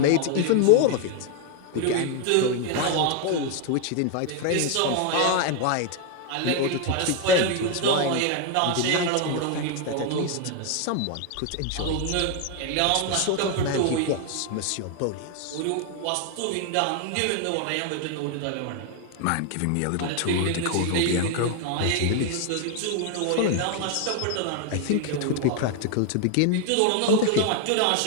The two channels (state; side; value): different; both; correlation 0.00